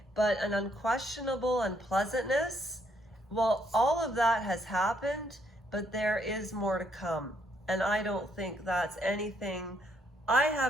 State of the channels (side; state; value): both; normal; correlation 0.72